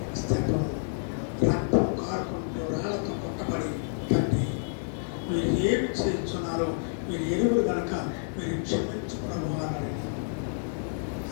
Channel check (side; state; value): right; silent; digital silence